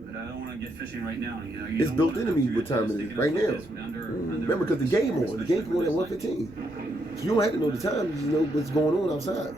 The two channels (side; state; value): right; noise; rumble, 24 dB below the sound